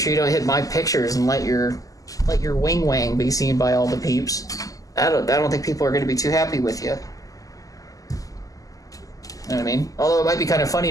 you don't hit my pictures and let your wing wang be seen by all the peeps. I don't think people are going to be too happy with you. You know what I mean? Although it might be kind of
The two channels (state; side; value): late; right; 0.17 ms